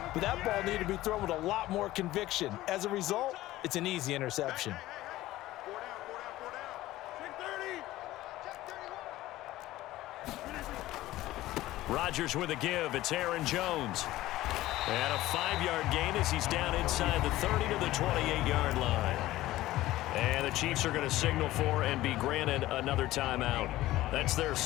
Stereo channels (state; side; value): quieter; right; 16.2 dB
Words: But that ball needed to be thrown with a lot more conviction. As a result, it's an easy interception. Rodgers with a give. It's Aaron Jones. And a 5-yard gain as he's down inside the 30 to the 28-yard line. And the Chiefs are going to signal for and be granted another timeout. That's their